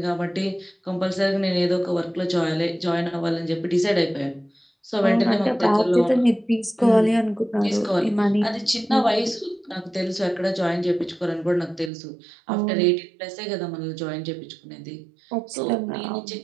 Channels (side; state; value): left; drops out; at 11.9 s